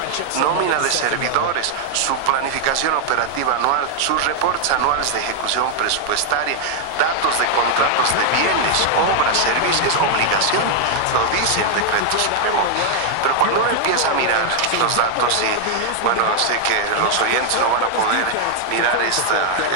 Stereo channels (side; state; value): both; different; correlation 0.00